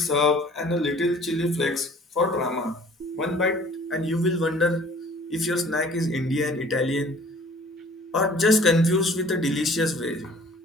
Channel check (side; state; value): both; normal; correlation 0.52